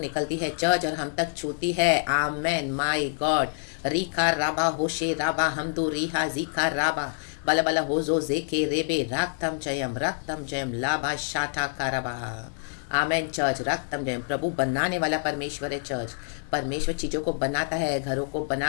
है चर्च और हम तक छूती है। आमेन, माय गॉड। रीखा राबा होशे राबा हमदो रीहा जीखा राबा बला बला होजो जेके रेबे रक्तम जयम लाभा शाठा कारबा। आमेन चर्च, रक्तम जयम। प्रभु बनाने वाला परमेश्वर है चर्च। परमेश्वर चीज़ों को बनाता है, घरों को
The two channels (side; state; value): right; silent; digital silence